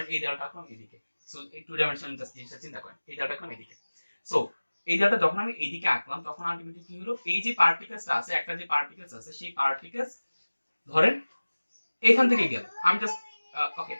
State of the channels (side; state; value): both; inverted; correlation -1.00